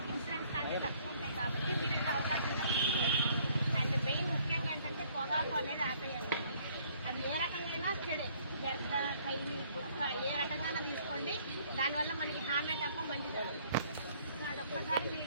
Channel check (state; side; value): inverted; both; correlation -0.61